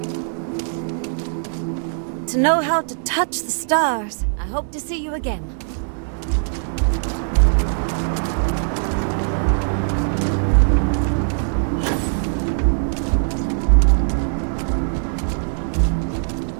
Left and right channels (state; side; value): silent; left; digital silence